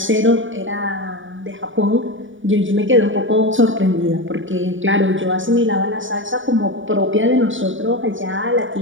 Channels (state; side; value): late; left; 0.57 ms